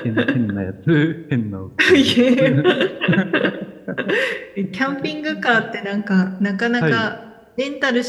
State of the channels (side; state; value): both; identical; correlation 1.00